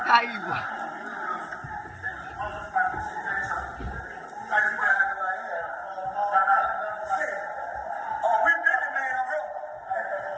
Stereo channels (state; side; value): identical; both; correlation 1.00